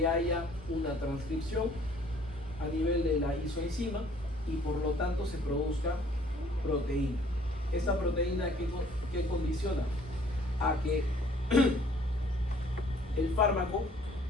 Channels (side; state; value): both; normal; correlation 0.58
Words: haya una transcripción a nivel de la isoenzima y por lo tanto se produzca proteína. Esta proteína ¿qué condiciona? A que el fármaco